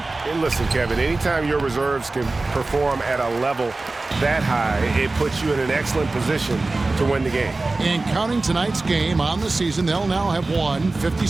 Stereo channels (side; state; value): left; quieter; 3.3 dB